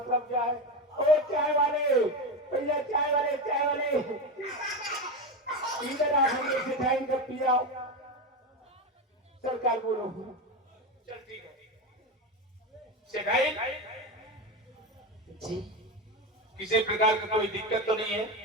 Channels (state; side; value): normal; both; correlation 0.17